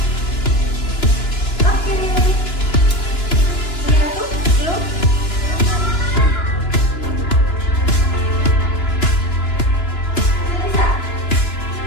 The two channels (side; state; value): right; late; 2.9 ms